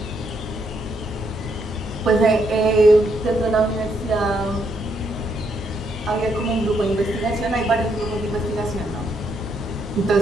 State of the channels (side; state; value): both; normal; correlation 0.75